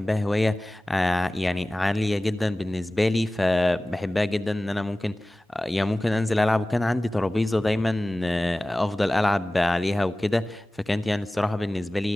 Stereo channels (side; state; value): both; normal; correlation 0.97